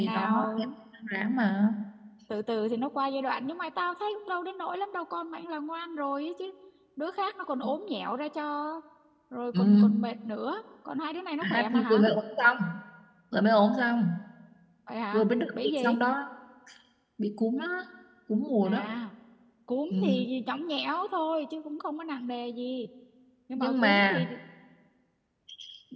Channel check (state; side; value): identical; both; correlation 1.00